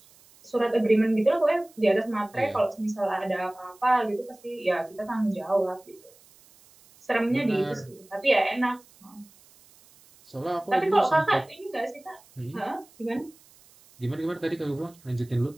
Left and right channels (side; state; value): right; noise; hiss, 27 dB below the sound